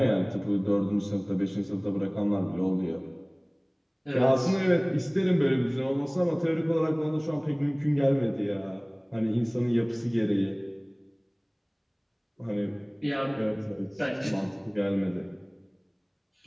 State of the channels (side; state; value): both; identical; correlation 1.00